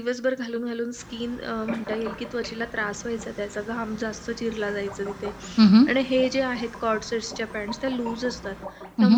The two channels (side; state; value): both; identical; correlation 1.00